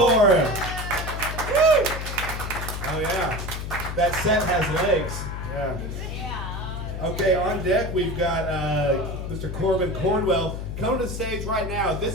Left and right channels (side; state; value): left; noise; hum, 6 dB below the sound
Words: him. Woo! Oh yeah, that set has legs. Yeah. Okay, on deck we've got Mr. Corbin Cornwell. Come to the stage right now.